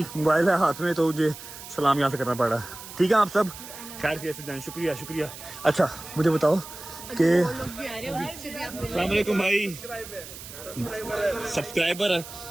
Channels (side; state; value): right; noise; hiss, 14 dB below the sound